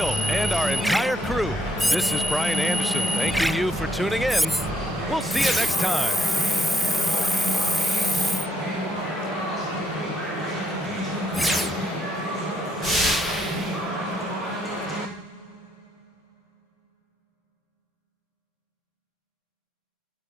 and our entire crew, this is Brian Anderson thanking you for tuning in. We'll see you next time.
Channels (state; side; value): normal; both; correlation 0.76